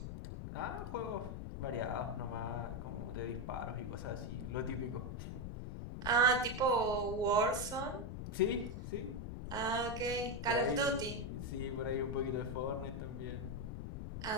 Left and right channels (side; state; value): left; noise; rumble, 6 dB below the sound